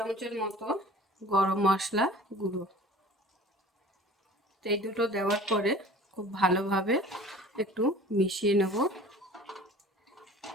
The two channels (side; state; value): both; normal; correlation 0.45